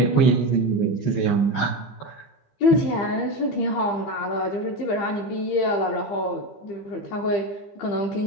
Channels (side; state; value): right; late; 15 ms